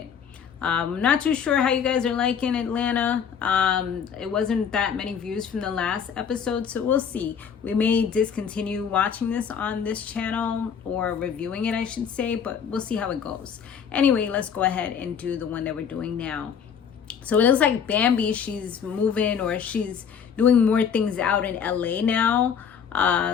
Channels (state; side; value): quieter; right; 7.3 dB